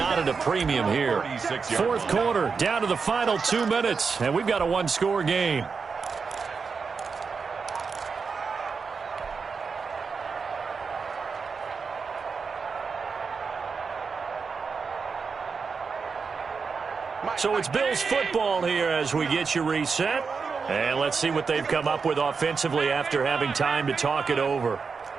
at a premium here. 4th quarter, down to the final 2 minutes, and we've got a 1-score game. So it's Bills football here as we get you reset. And let's see what they've come up with offensively after having time to talk it over.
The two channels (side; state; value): left; quieter; 5.2 dB